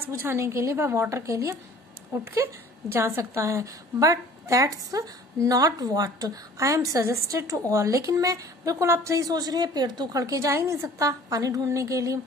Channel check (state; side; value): normal; both; correlation 0.50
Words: बुझाने के लिए वह वाटर के लिए उठ के जा सकता है। But that's not what I am suggested to all. लेकिन मैं बिल्कुल, आप सही सोच रहे हैं, पेड़ तो उखड़ के जा ही नहीं सकता पानी ढूंढने के लिए,